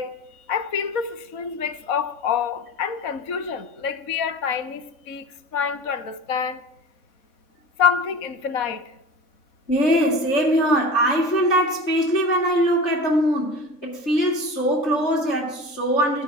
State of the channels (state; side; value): late; right; 3.6 ms